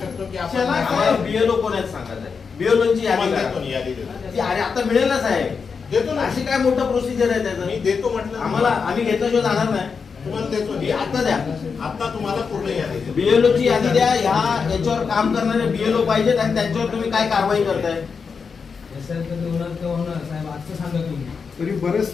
शकतो की आपण बीएलओ कोण आहेत सांगायचं आहे. बीएलओची यादी देतो करा. यादी देतो. ती अरे आता मिळेल ना साहेब, देतो ना. अशी काय मोठं प्रोसिजर आहे मी त्याचं? देतो म्हटलं आम्हाला आम्ही घेतल्याशिवाय जाणार नाही. तुम्हाला देतो मी आता द्या. आता तुम्हाला पूर्ण यादी देतो. बीएलओ ची यादी द्या. याच्यावर काम करणारे बीएलओ पाहिजेत आणि त्यांच्यावर तुम्ही काय कारवाई करताय? तरी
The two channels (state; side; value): quieter; right; 5.5 dB